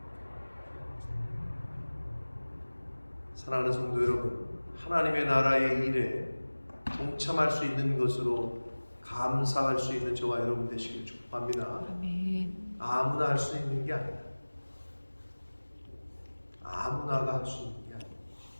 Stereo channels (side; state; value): both; inverted; correlation -1.00